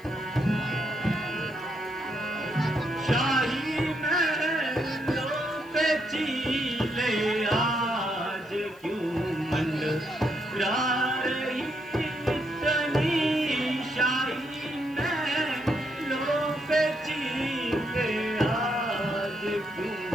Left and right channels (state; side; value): noise; left; hiss, 27 dB below the sound